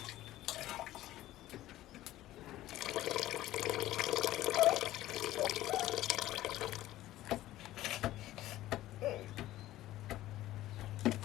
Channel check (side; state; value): right; quieter; 15.1 dB